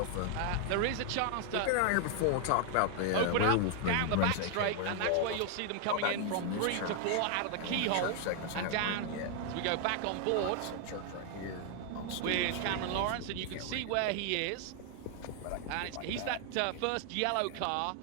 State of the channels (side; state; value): both; different; correlation 0.00